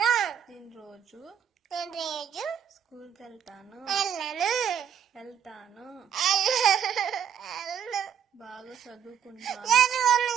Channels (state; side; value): quieter; left; 8.5 dB